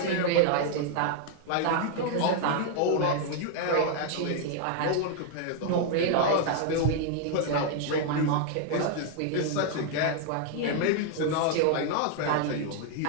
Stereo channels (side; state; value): both; different; correlation 0.00